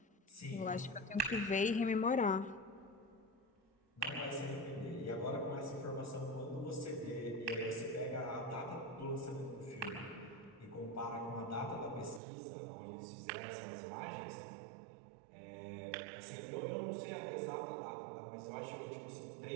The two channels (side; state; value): left; drops out; at 12.2 s